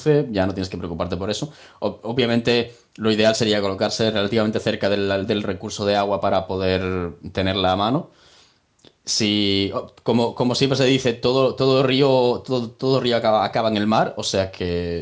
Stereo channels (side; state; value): both; identical; correlation 1.00